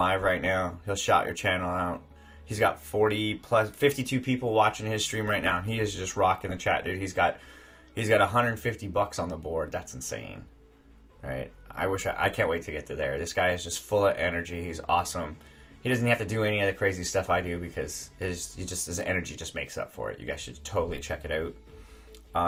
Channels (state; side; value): identical; both; correlation 1.00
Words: right now. He'll shout your channel out. He's got 52 people watching his stream right now. He is just rocking the chat, dude. He's got $150 on the board. That's insane, right? I can't wait to get to there. This guy is just full of energy. He's awesome. He doesn't have to do any of the crazy stuff I do because his energy just makes up for it. You guys should totally check it out.